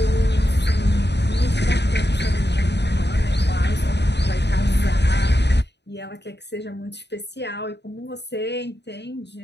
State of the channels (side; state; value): right; late; 0.50 ms